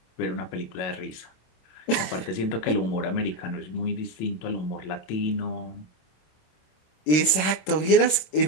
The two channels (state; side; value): late; right; 26 ms